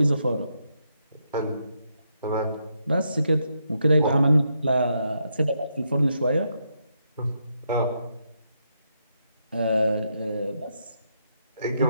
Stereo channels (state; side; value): inverted; both; correlation -0.80